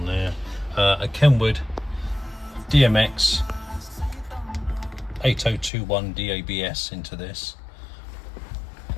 there, a KENWOOD DMX8021DABS into this.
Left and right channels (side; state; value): right; drops out; at 5.7 s